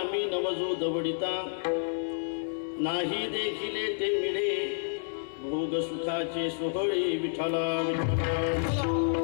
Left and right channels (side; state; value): right; silent; 57 dB below the other